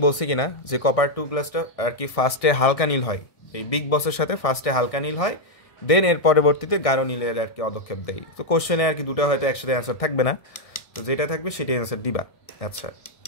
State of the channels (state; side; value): late; right; 1.6 ms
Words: বলছি কিনা যে কপার 2 প্লাসটা আর কি ফার্স্টে হালকা নীল হয়, এই বিগ বসের সাথে ফার্স্টে হালকা নীল হয়, দেন এর পরবর্তীতে গাঢ় নীলের আর কি অদক্ষেপ দেয়। তো কোশ্চেনে আর কি দুটো হয়তো একসাথে অ্যান্সার থাকবে না, তো যেটা থাকবে সেটাই অ্যান্সার দিবা। আচ্ছা,